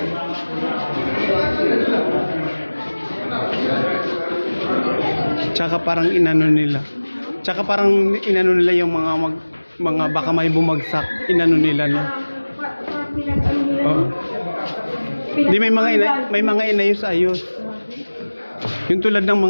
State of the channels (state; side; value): inverted; both; correlation -1.00